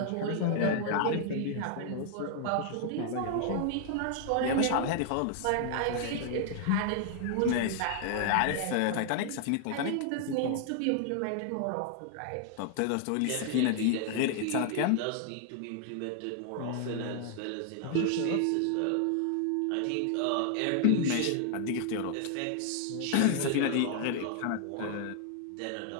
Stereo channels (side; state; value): both; different; correlation 0.00